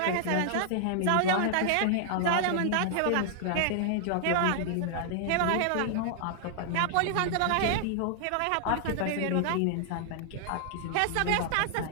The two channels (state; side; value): different; both; correlation 0.00